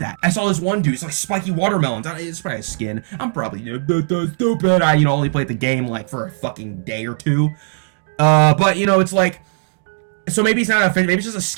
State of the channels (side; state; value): left; silent; digital silence